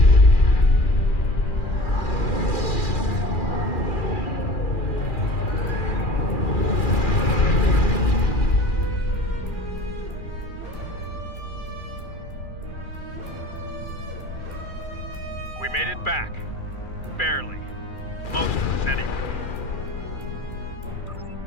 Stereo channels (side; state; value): right; late; 2.4 ms